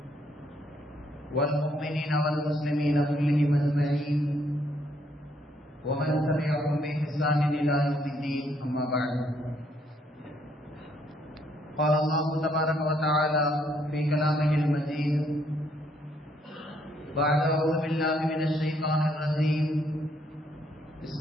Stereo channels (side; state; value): both; normal; correlation 0.70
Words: والمؤمنين والمسلمين كلهم أجمعين ومن تبعهم بإحسان إلى يوم الدين أما بعد قال الله تبارك وتعالى في كلامه المجيد بعد أعوذ بالله من الشيطان الرجيم